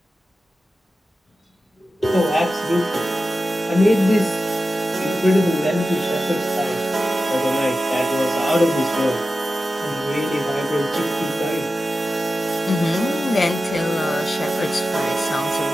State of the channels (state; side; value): normal; both; correlation 0.93